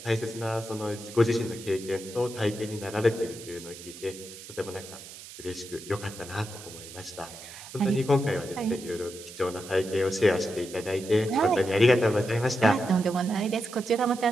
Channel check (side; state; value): right; noise; hiss, 15 dB below the sound